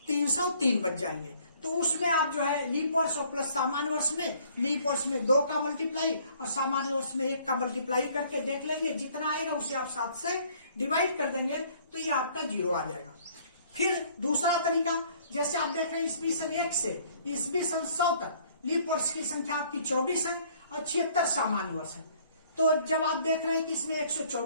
303 बच जाएंगे। तो उसमें आप जो है लीप वर्ष और प्लस सामान्य वर्ष में, लीप वर्ष में 2 का मल्टीप्लाई और सामान्य वर्ष में 1 का मल्टीप्लाई करके देख लेंगे, जितना आएगा उसे आप 7 से डिवाइड कर देंगे, तो ये आपका 0 आ जाएगा। फिर दूसरा तरीका, जैसे आप देख रहे हैं ईस्वी सन 1 से ईस्वी सन 100 तक लीप वर्ष की संख्या आपकी 24 है और 76 सामान्य वर्ष है। तो जब आप देख रहे हैं कि इसमें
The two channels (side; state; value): both; inverted; correlation -0.59